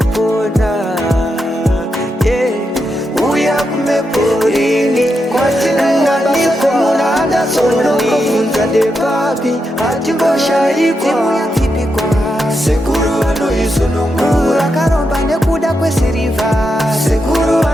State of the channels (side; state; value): both; normal; correlation 0.85